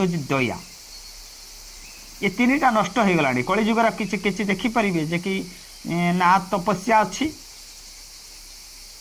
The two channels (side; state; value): both; identical; correlation 1.00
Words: हूँ दया। ये तीनटा नष्ट हो गलानी कलिजुगर किछि किछि देखि परिबे जे कि ना तपस्या अछि